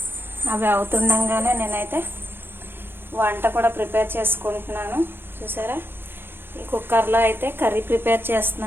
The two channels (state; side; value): late; left; 0.10 ms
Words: అవి అవుతుండగానే నేనైతే వంట కూడా ప్రిపేర్ చేసుకుంటున్నాను. చూసారా, ఈ కుక్కర్లో అయితే కర్రీ ప్రిపేర్